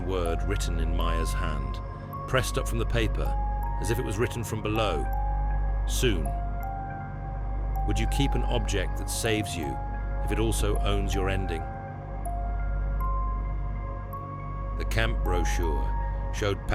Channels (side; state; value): both; identical; correlation 1.00